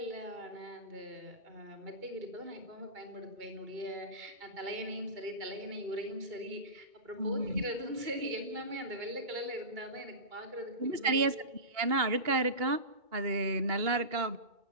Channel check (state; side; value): late; left; 2.2 ms